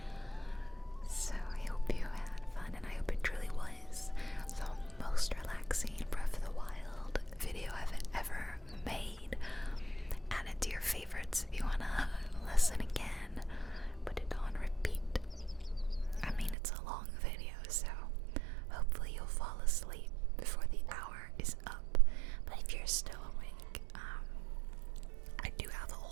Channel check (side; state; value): left; drops out; at 16.6 s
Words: So I hope you had fun, and I hope it truly was the most relaxing Breath of the Wild video I've ever made. Add it to your favorites if you wanna listen again. Put it on repeat. I mean, it's a long video, so hopefully you'll fall asleep before the hour is up. But if you're still awake, I do have a